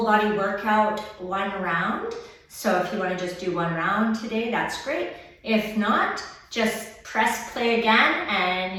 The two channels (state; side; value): identical; both; correlation 1.00